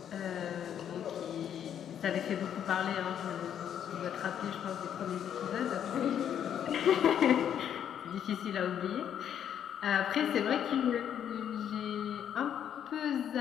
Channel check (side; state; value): right; quieter; 9.3 dB